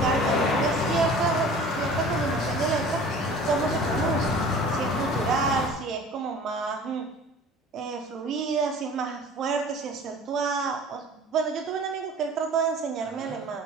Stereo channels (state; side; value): normal; both; correlation 0.44